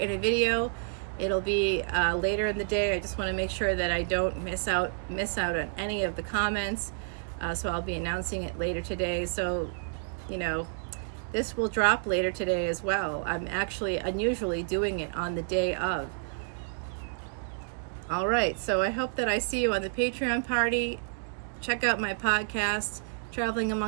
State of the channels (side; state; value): left; silent; digital silence